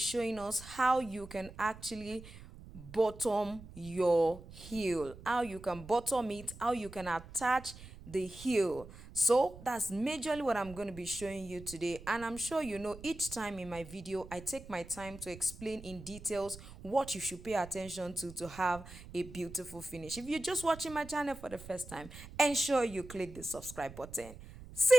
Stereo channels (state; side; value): noise; right; rumble, 16 dB below the sound